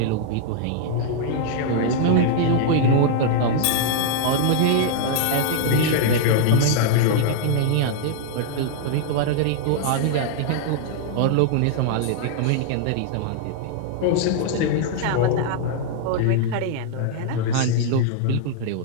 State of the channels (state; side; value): different; both; correlation -0.01